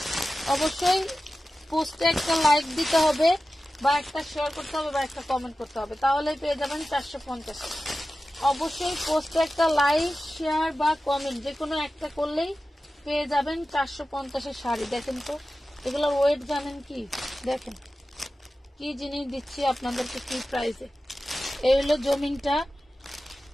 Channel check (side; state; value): both; normal; correlation 0.94